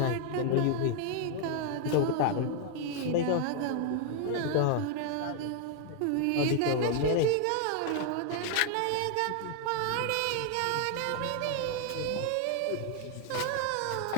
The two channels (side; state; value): both; different; correlation 0.00